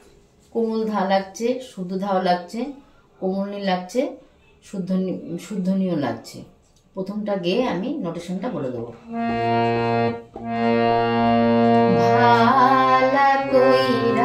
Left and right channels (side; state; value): both; identical; correlation 1.00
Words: কোমল ধা লাগছে, শুদ্ধ ধাও লাগছে, কোমলনি লাগছে, শুদ্ধনীয় লাগছে। প্রথমটা গেয়ে আমি নোটেশনটা বলে দেবো। ভালা